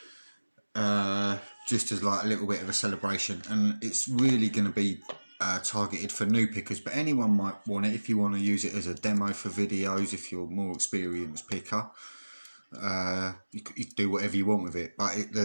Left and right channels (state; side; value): inverted; both; correlation -1.00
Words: just as like a little bit of a celebration, and it's really going to be targeted for new pickers, but anyone might want it if you want to use it as a demo for videos. If you're a more experienced picker, you can do whatever you want with it, but